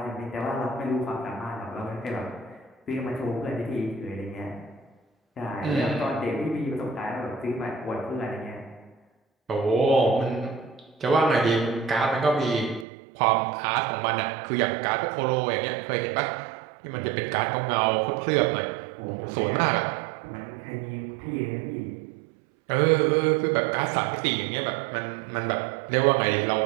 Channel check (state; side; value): drops out; left; at 12.9 s